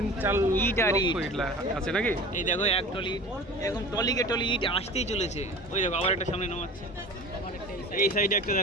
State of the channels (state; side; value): normal; both; correlation 0.38